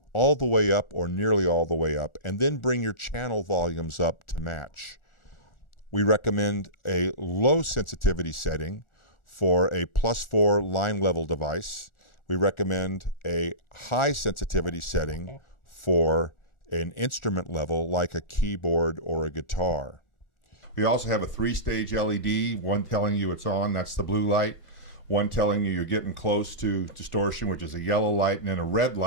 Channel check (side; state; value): right; late; 1.4 ms